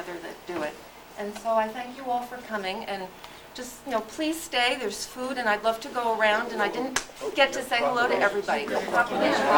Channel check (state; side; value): identical; both; correlation 1.00